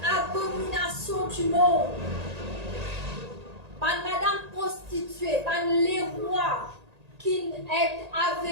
abomination du monde. Pas une madame prostituée, pas les rois qui est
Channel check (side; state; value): left; late; 1.8 ms